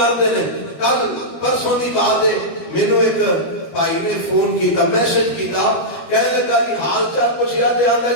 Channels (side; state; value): right; late; 12 ms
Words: ہیں۔ کل پرسوں کی بات ہے، مینوں ایک بھائی نے فون کیتا، میسج کیتا، کہنے لگا جی حال چال پوچھیا تے آندا